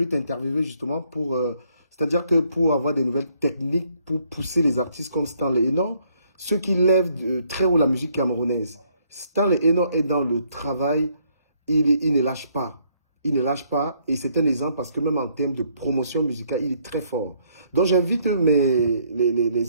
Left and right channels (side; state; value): both; inverted; correlation -0.69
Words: t'interviewer justement pour... c'est-à-dire que pour avoir des nouvelles techniques, pour pousser les artistes comme Stanley Eno, ceux qui lèvent très haut la musique camerounaise. Stanley Eno est dans le travail, il ne lâche pas. Il ne lâche pas, et c'est un exemple parce que même en termes de promotion musicale, il est très fort. Donc j'invite